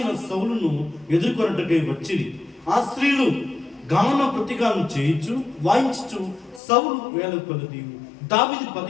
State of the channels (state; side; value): drops out; right; at 6.6 s